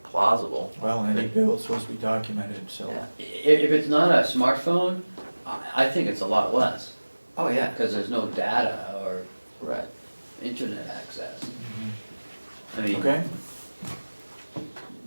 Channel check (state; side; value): inverted; both; correlation -1.00